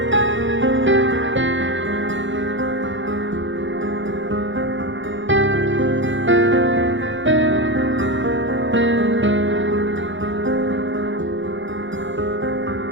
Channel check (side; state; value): left; late; 0.55 ms